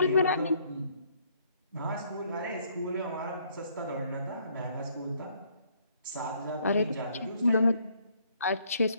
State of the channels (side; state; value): both; inverted; correlation -0.67